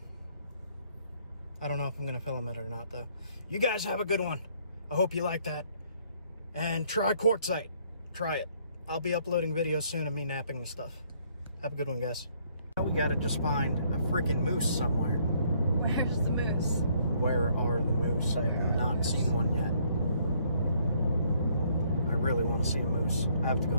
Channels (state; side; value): inverted; both; correlation -0.66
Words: I don't know if I'm going to film it or not, though. You guys have a good one. I hope you like that. And try quartzite. Try it. I'll be uploading videos soon of me napping the stuff. Have a good one, guys. Now we got to just find a freaking moose somewhere. Where's the moose? Where are the moose? I have not seen one yet. I really want to see a moose. I have to go